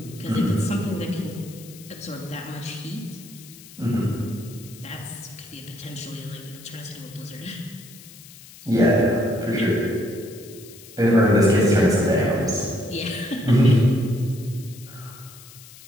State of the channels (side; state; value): left; noise; hiss, 19 dB below the sound